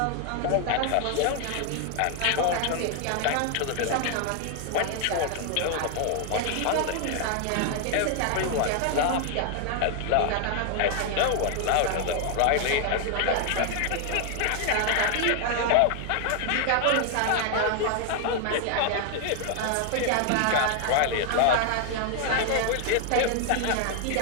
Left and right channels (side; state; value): both; different; correlation 0.00